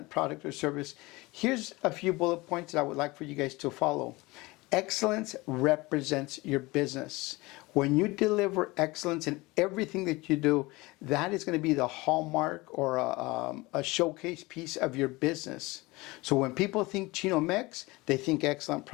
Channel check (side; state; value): right; quieter; 22.3 dB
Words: product or service. Here's a few bullet points that I would like for you guys to follow. Excellence represents your business. When you deliver excellence in everything that you do, that is going to be the hallmark or a showcase piece of your business. So when people think Chino-Mex, they think excellent